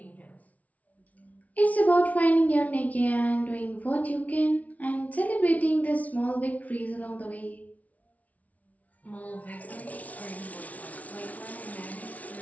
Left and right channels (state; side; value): late; right; 0.070 ms